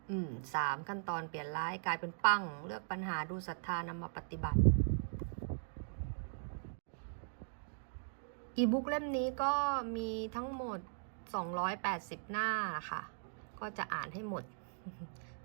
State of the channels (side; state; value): left; silent; digital silence